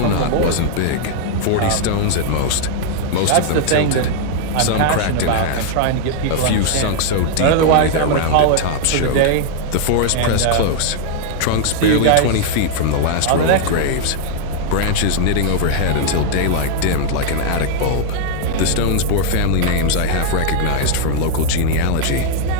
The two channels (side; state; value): both; different; correlation 0.00